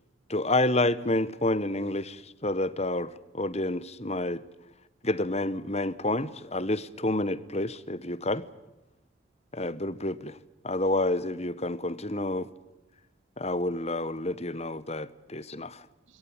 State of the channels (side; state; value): both; normal; correlation 0.32